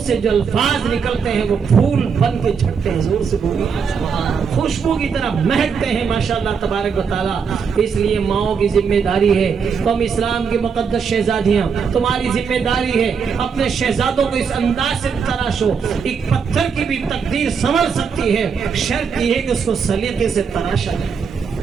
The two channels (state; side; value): quieter; left; 6.2 dB